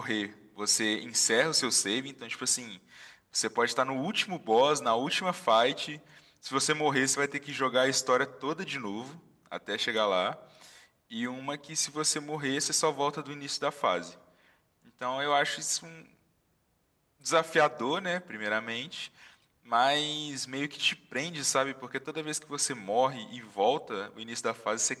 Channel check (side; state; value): both; identical; correlation 1.00